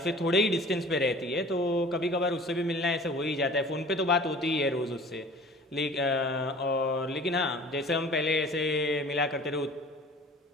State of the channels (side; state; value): both; normal; correlation 0.46